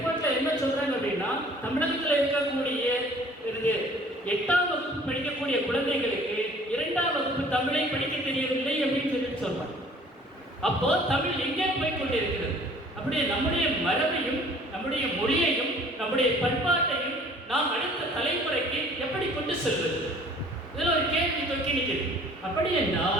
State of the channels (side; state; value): both; normal; correlation 0.53